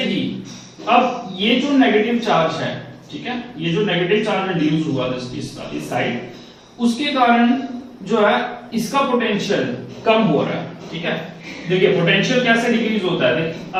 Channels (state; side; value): identical; both; correlation 1.00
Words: ही अब ये जो नेगेटिव चार्ज है, ठीक है, ये जो नेगेटिव चार्ज रिड्यूस हुआ इस साइड, उसके कारण जो है इसका पोटेंशियल कम हो रहा है. ठीक है, देखिए पोटेंशियल कैसे डिक्रीज होता है.